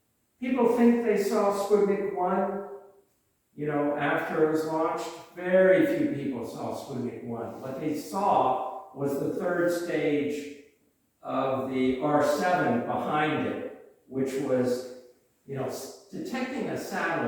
People think they saw Sputnik 1, you know, after it was launched. Very few people saw Sputnik 1. What they saw was the third stage of the R7 behind it, which was, you know, detecting a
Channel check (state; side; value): identical; both; correlation 1.00